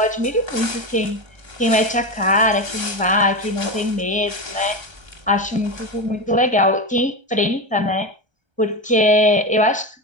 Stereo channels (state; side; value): late; left; 1.3 ms